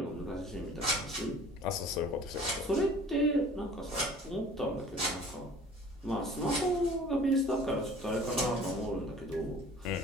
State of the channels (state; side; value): normal; both; correlation 0.48